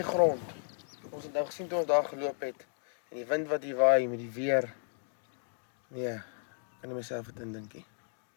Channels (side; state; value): right; silent; digital silence